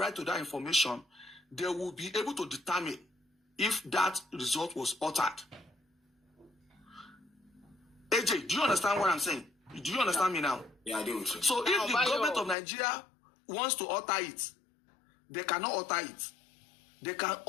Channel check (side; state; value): right; drops out; at 12.6 s